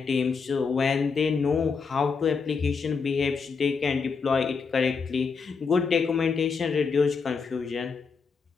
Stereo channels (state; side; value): quieter; right; 5.2 dB